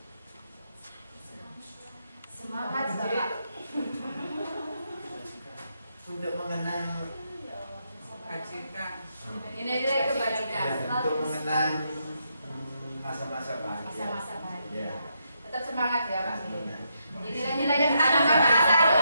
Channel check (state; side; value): inverted; both; correlation -0.79